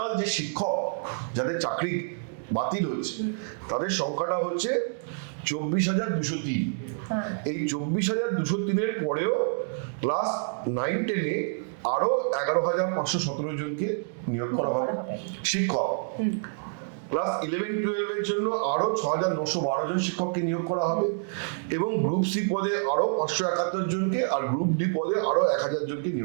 যে শিক্ষক যাদের চাকরি বাতিল হচ্ছে তাদের সংখ্যাটা হচ্ছে 24,203। এই 24,203-এর পরেও ক্লাস 9-10-এ আরো 11,517 জনকে নিয়োগ করা হবে শিক্ষক। ক্লাস 11-12-এর জন্য আরো 6,912 জন শিক্ষককে নিয়োগ করা হবে, এবং গ্রুপ সি পদে আরো 571 জনকে, আর গ্রুপ ডি পদে আরো 1000 জনকে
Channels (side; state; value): left; silent; digital silence